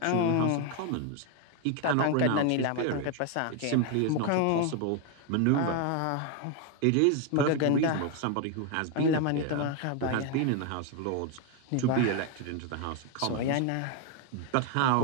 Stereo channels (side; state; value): both; different; correlation 0.01